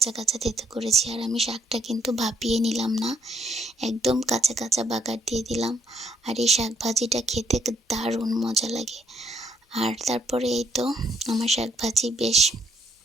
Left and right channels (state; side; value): normal; both; correlation 0.70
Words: কাঁচা থেতো করেছি। আর আমি শাকটা কিন্তু ভাপিয়ে নিলাম না, একদম কাঁচা কাঁচা বাগার দিয়ে দিলাম। আর এই শাক ভাজিটা খেতে দারুণ মজা লাগে। আর তারপরে এই তো আমার শাক ভাজি বেশ